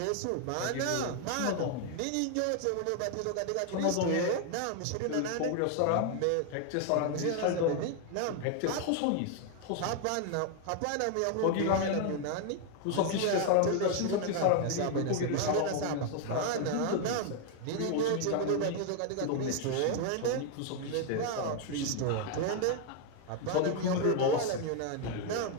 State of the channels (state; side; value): different; both; correlation 0.00